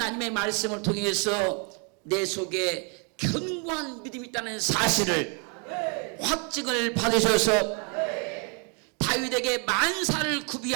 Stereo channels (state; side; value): quieter; left; 36.3 dB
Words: 말씀을 통해서 내 속에 견고한 믿음이 있다는 사실을 확증을 받으셔서 다윗에게 만사를